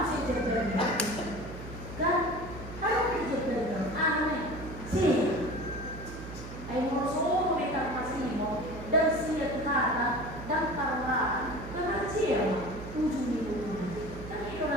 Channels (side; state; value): right; noise; hum, 11 dB below the sound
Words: mesti terjadi? Kan? Apa mesti terjadi? Aneh. Sih. Ayo merosot mereka masih mau dan siap kata dan parah. Karena siapa? Ujung itu. Kan itu